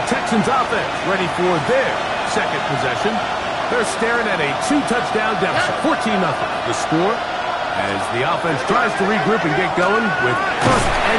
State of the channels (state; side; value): identical; both; correlation 1.00